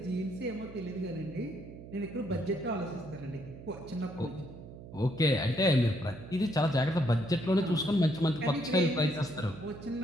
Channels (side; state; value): right; noise; hum, 15 dB below the sound